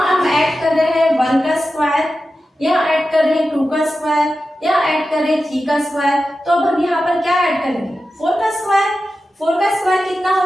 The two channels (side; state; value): both; normal; correlation 0.92